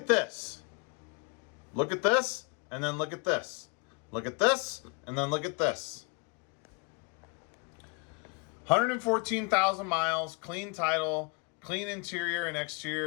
this. Look at this, and then look at this. Look at this, and then look at this. 114,000 miles, clean title, clean interior and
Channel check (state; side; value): quieter; right; 31.3 dB